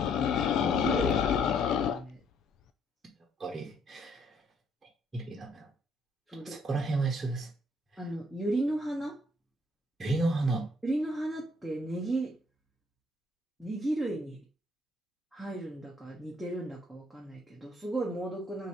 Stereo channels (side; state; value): both; normal; correlation 0.67